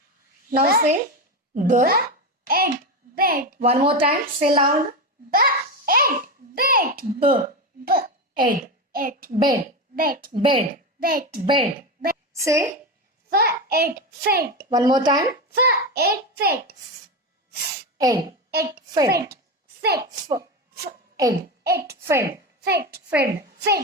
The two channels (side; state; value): both; normal; correlation 0.17